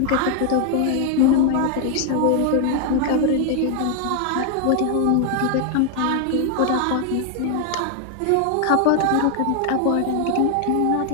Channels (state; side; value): different; both; correlation 0.00